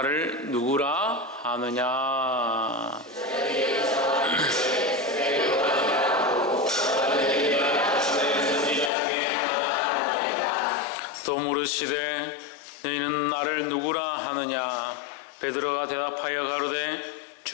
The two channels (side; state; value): right; drops out; at 8.9 s